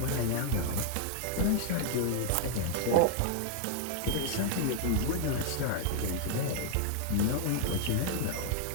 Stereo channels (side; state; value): both; different; correlation 0.00